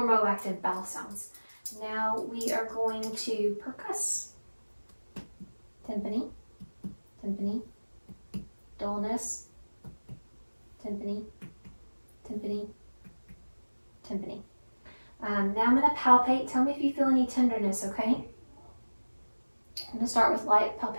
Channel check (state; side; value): inverted; both; correlation -1.00